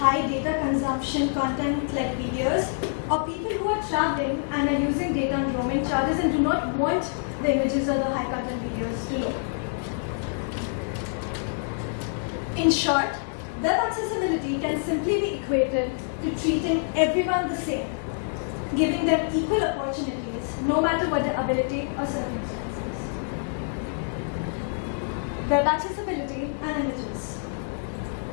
data consumption content like videos, or people who are traveling and are using data on roaming charges and do not want the images or the high content videos to load. In short, web accessibility can simply be equated to treating everyone the same, giving them equal opportunities no matter what their ability or circumstances. Web accessibility and images.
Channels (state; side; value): silent; right; digital silence